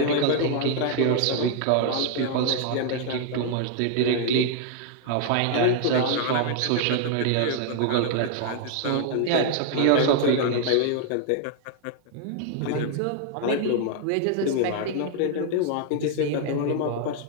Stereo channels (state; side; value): different; both; correlation 0.00